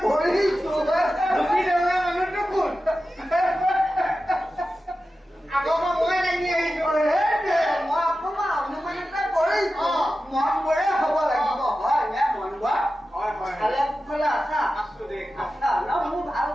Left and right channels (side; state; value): both; normal; correlation 0.93